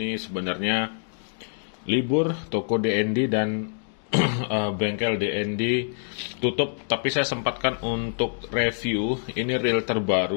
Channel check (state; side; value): silent; right; digital silence